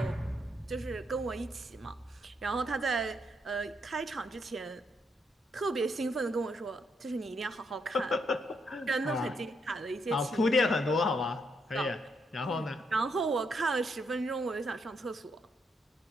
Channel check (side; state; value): both; normal; correlation 0.77